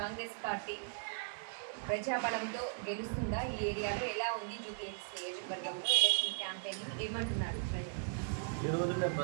కాంగ్రెస్ పార్టీ ప్రజాబలంతో గెలుస్తుందా, ఈ ఏరియాలో ఎలా ఉంది, జూబ్లీహిల్స్ నియోజకవర్గంలో ఎలక్షన్ క్యాంపెయిన్ ఏమంటున్నారు ప్రజలు. ఈరోజు మేము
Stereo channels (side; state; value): left; silent; digital silence